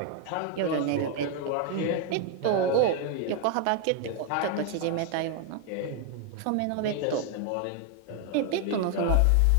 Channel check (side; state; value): both; different; correlation 0.00